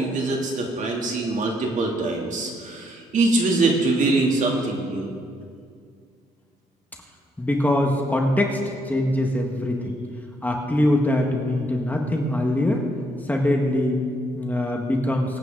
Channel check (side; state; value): both; normal; correlation 0.74